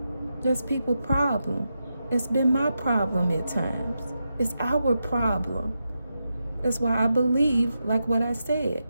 That's people's problem. It's been my problem at times. It's our problem. That's why I believe, like what I said,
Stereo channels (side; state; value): both; inverted; correlation -0.88